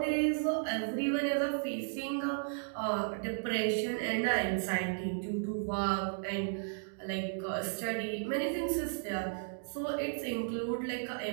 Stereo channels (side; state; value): left; silent; digital silence